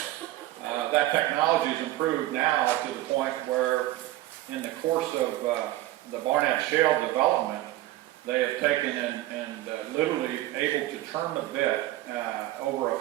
That technology has improved now to the point where in the course of the Barnett Shale development, they have taken and literally able to turn the bit over a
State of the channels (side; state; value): left; quieter; 15.9 dB